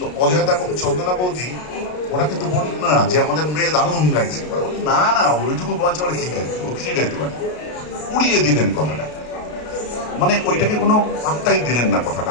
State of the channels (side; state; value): right; late; 33 ms